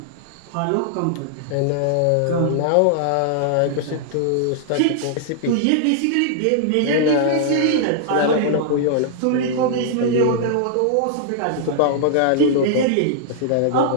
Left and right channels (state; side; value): different; both; correlation -0.01